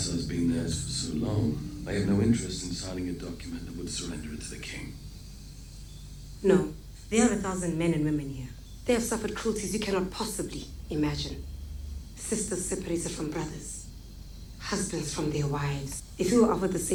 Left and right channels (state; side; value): identical; both; correlation 1.00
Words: been theirs for so long. They have no interest in signing a document that would surrender it to the king. No, there are 1,000 men and women here. They have suffered cruelties you cannot possibly imagine. Sisters separated from brothers. Husbands from their wives. If you were offered the